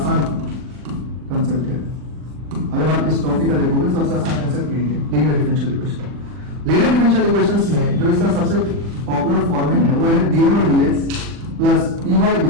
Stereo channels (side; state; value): left; late; 40 ms